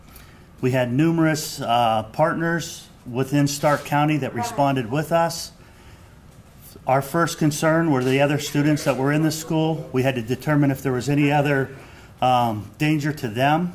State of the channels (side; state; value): both; identical; correlation 1.00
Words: We had numerous partners within Stark County that responded with us. Our first concern were the other students that were in the school. We had to determine if there was any other danger to